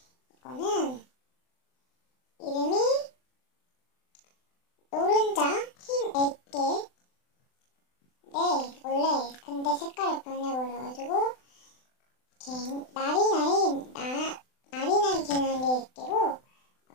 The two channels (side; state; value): right; late; 39 ms